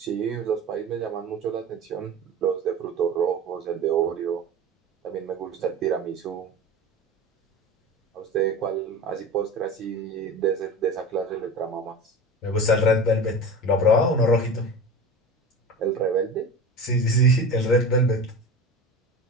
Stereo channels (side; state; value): both; normal; correlation 0.32